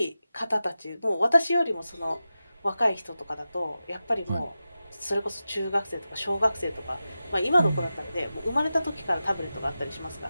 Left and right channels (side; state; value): both; inverted; correlation -0.93